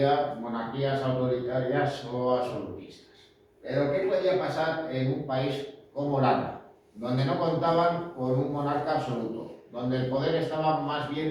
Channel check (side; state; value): both; identical; correlation 1.00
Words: monarquías autoritarias o absolutistas. Pero ¿qué podía pasar en un país como Holanda, donde no contaban con un monarca absoluto, donde el poder estaba más